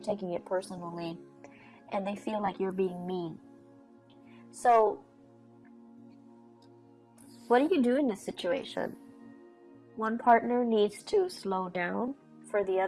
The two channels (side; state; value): both; identical; correlation 1.00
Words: it personally, and they feel like you're being mean. So what do you do in this situation? One partner needs to slow down for the